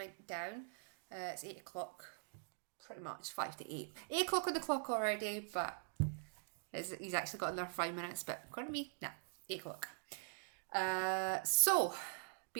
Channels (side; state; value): left; silent; digital silence